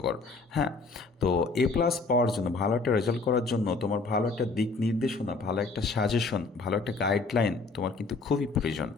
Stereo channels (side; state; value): right; quieter; 3.9 dB